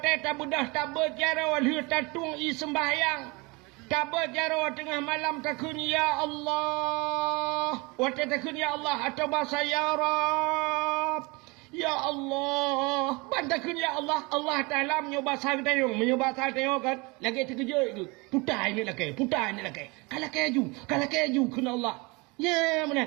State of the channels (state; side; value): quieter; left; 26.9 dB